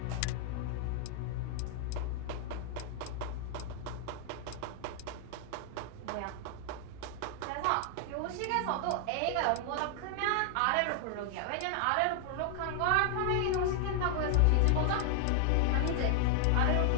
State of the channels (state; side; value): different; both; correlation 0.00